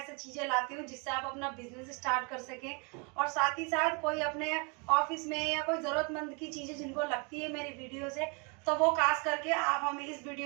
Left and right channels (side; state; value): left; quieter; 33.1 dB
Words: चीजें लाती हूँ जिससे आप अपना बिजनेस स्टार्ट कर सकें और साथ ही साथ कोई अपने ऑफिस में या कोई जरूरतमंद की चीजें जिनको लगती है मेरी वीडियो से, तो वो खास करके आप हमें इस